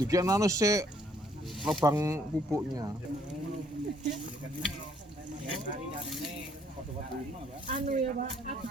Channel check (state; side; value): normal; both; correlation 0.65